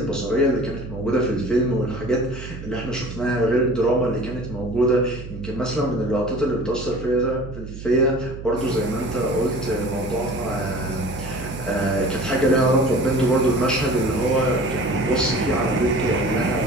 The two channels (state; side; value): noise; right; hum, 11 dB below the sound